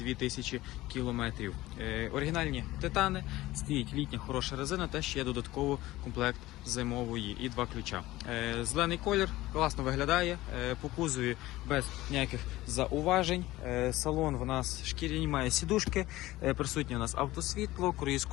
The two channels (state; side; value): quieter; right; 17.4 dB